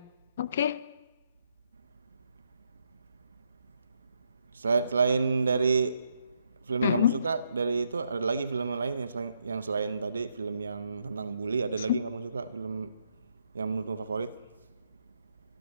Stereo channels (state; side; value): inverted; both; correlation -0.76